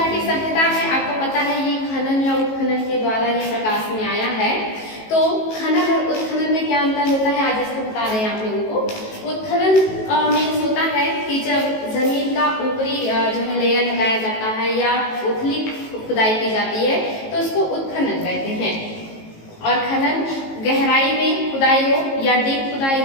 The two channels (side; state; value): right; late; 18 ms